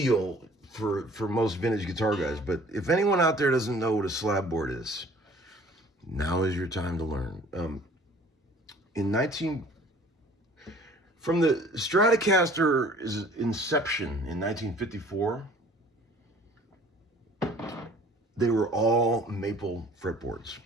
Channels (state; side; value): normal; both; correlation 0.52